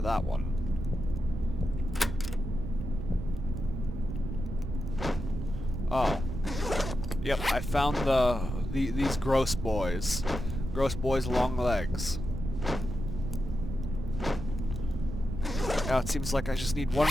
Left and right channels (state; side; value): noise; right; rumble, 6 dB below the sound